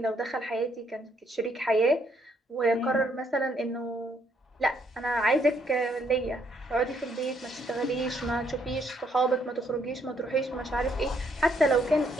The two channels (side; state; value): both; normal; correlation 0.71